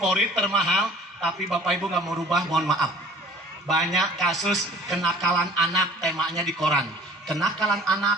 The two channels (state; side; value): normal; both; correlation 0.49